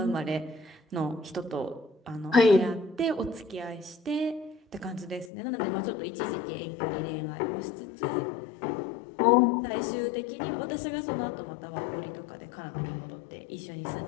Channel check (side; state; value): right; drops out; at 5.3 s